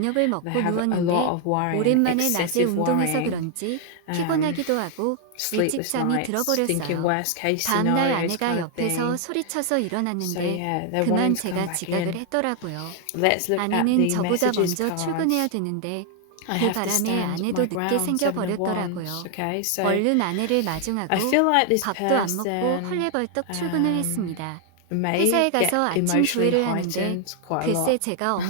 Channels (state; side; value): different; both; correlation 0.00